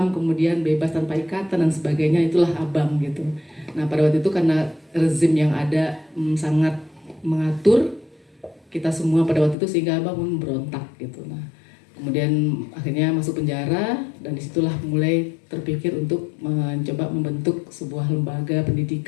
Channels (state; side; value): drops out; right; at 9.6 s